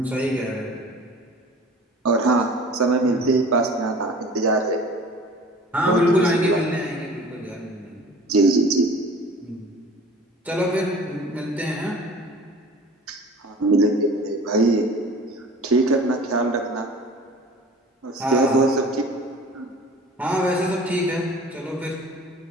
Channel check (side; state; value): both; normal; correlation 0.43